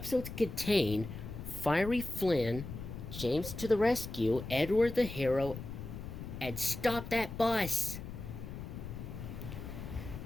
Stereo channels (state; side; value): noise; left; rumble, 9 dB below the sound